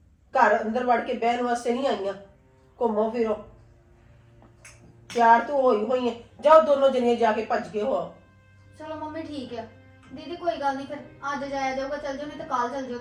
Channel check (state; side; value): identical; both; correlation 1.00